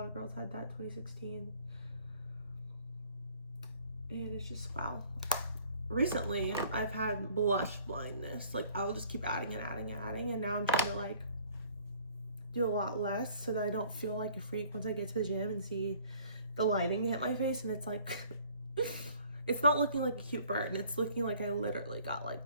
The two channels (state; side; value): inverted; both; correlation -0.56